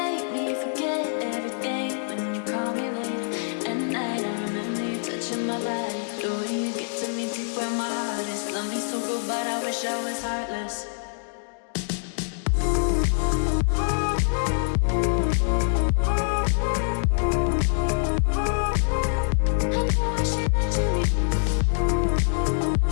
me forget everything when you call me late at night. I remember you touching my body, the way you get to me deep where my heart is. Love me so good, but I wish I was heartless.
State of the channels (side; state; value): right; silent; digital silence